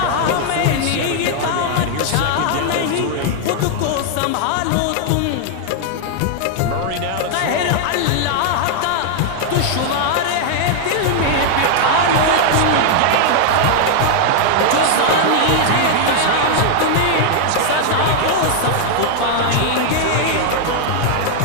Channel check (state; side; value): different; both; correlation 0.00